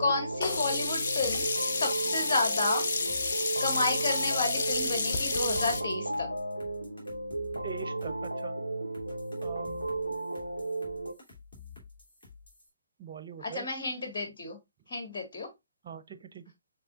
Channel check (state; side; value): inverted; both; correlation -0.78